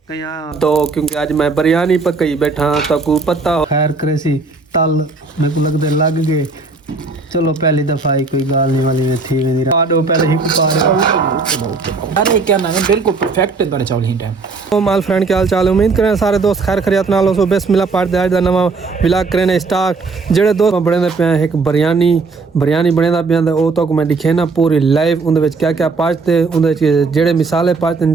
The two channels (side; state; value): left; quieter; 4.2 dB